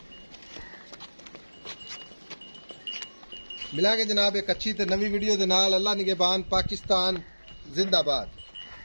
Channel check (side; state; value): both; inverted; correlation -1.00